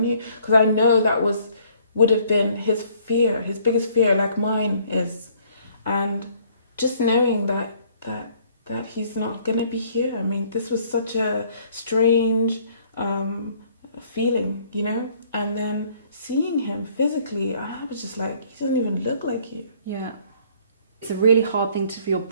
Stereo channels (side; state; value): both; inverted; correlation -0.61